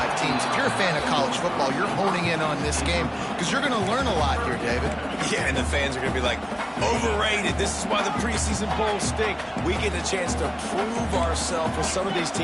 teams. If you're a fan of college football, you're honing in on this game because you're going to learn a lot here, David. Yeah, and the fans are going to be like, overrated. This is why the preseason bowls stink. We get a chance to prove ourselves with some of these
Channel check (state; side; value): identical; both; correlation 1.00